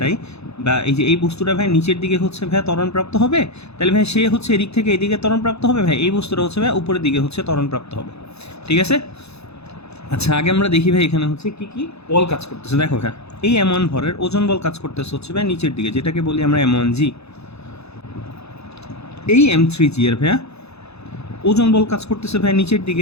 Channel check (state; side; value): late; right; 0.79 ms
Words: বা এই যে এই বস্তুটা ভাই নিচের দিকে হচ্ছে ভাই ত্বরণপ্রাপ্ত হবে, তাহলে ভাই সে হচ্ছে এদিক থেকে এদিকে ত্বরণপ্রাপ্ত হবে, ভাই এই বস্তুটা হচ্ছে ভাই উপরের দিকে হচ্ছে ত্বরণপ্রাপ্ত হবে। ঠিক আছে, আচ্ছা আগে আমরা দেখি ভাই এখানে হচ্ছে কি কি বল কাজ করতেছে। দেখো ভাই এই M1 ভরের ওজন বল কাজ করতেছে হচ্ছে ভাই নিচের দিকে, যেটাকে বলি আমরা M1G। এই M3G এর ভাইয়া ওজন বল কাজ করতেছে ভাই নিচের